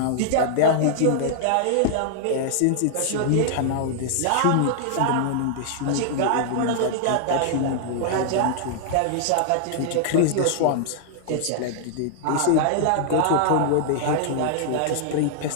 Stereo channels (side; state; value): both; different; correlation -0.01